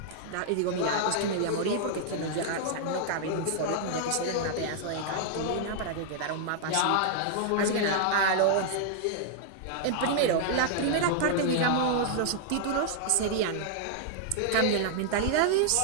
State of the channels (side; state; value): both; different; correlation -0.01